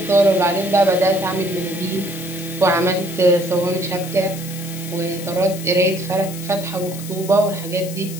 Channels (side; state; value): left; noise; hiss, 12 dB below the sound